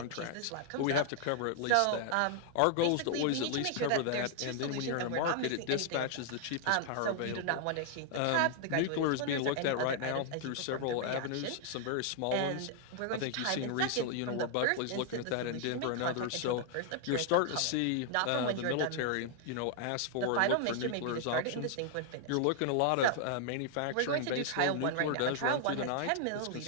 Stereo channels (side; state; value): both; different; correlation 0.00